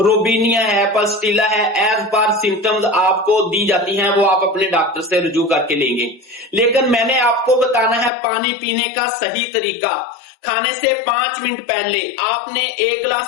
روبینیا ہے، پلسٹیلا ہے، ایز پر سمپٹمز آپ کو دی جاتی ہیں، وہ آپ اپنے ڈاکٹر سے رجوع کر کے لیں گے۔ لیکن میں نے آپ کو بتانا ہے پانی پینے کا صحیح طریقہ۔ کھانے سے 5 منٹ پہلے آپ نے 1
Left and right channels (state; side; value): drops out; right; at 8.1 s